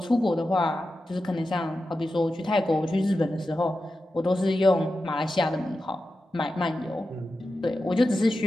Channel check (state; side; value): normal; both; correlation 0.91